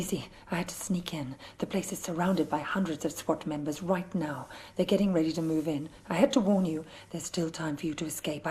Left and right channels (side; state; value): both; identical; correlation 1.00